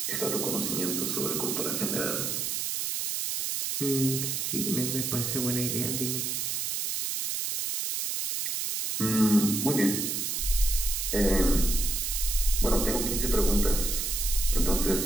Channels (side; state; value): right; noise; hiss, 1 dB below the sound